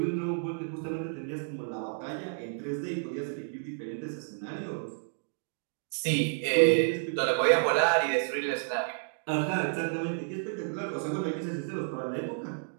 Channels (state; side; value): silent; left; digital silence